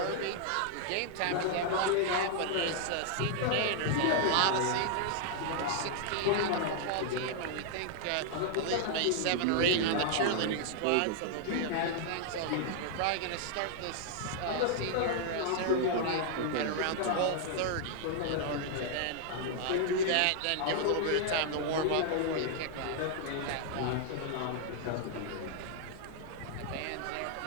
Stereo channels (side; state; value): both; different; correlation 0.00